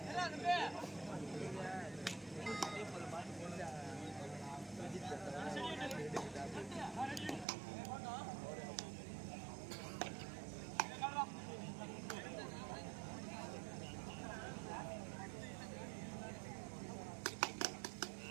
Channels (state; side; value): drops out; left; at 7.5 s